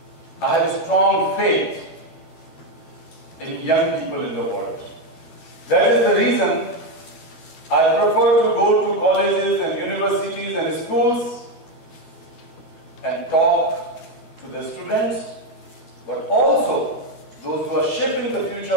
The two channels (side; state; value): right; late; 12 ms